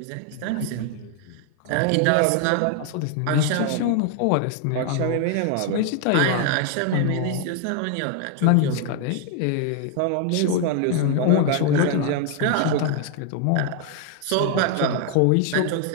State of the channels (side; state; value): both; different; correlation 0.00